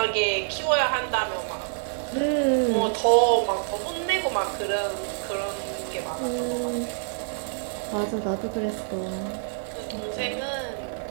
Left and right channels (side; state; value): left; silent; digital silence